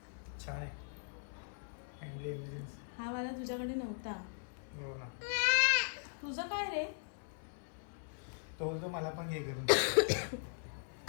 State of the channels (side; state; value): right; silent; 52 dB below the other